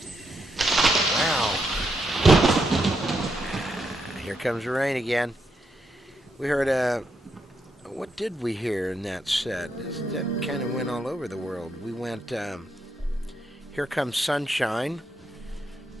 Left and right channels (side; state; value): both; normal; correlation 0.80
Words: Wow. Here comes the rain again. We heard, what did we hear in that set? That kind of went all over the world. We went, Here Comes Sunshine.